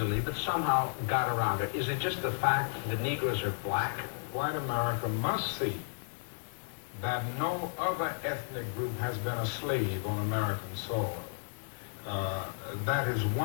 but somehow got around it. Is it just the fact that Negroes are black? White America must see that no other ethnic group has been a slave on American soil. That is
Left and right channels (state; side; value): silent; right; digital silence